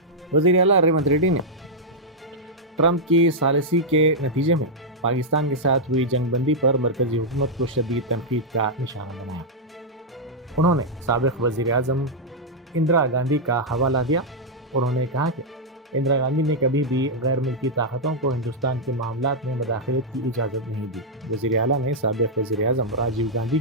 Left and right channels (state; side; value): normal; both; correlation -0.06